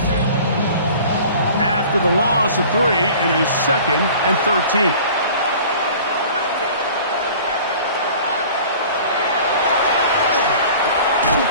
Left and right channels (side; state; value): both; inverted; correlation -0.45